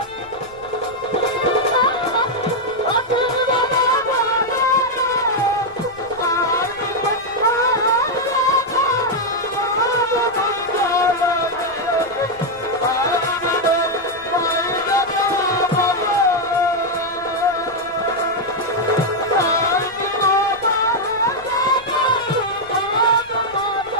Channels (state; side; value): noise; left; rumble, 26 dB below the sound